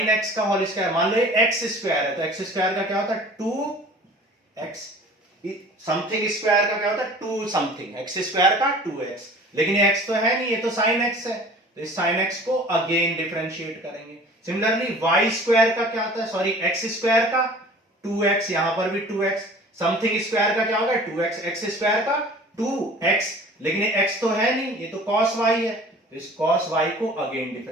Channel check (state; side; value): normal; both; correlation 0.45